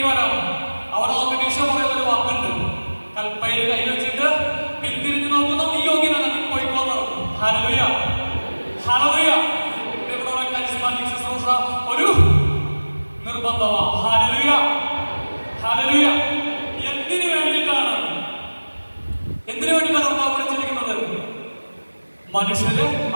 വരാം. അവരൊക്കെ ഈശോ പറയുന്ന ഒരു വാക്കുണ്ട്, കൽപ്പയിൽ കൈ വെച്ചിട്ട് പിന്തിരിഞ്ഞു നോക്കുന്ന നീ യോഗ്യനാണ്, നീ പോയിക്കോന്ന് പറഞ്ഞു. ഹല്ലേലൂയ. ഹല്ലേലൂയ. ഇവിടെ കരിസ്മാറ്റിക് ശുശ്രൂഷ ഒരു നിർബന്ധമാണ്. ഹല്ലേലൂയ. ഹല്ലേലൂയ. എന്തിനു വേണ്ടിയിട്ടാണ് കർത്താവ് വിളിച്ചിരിക്കുന്നത്? മനുഷ്യരെ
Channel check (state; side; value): inverted; both; correlation -1.00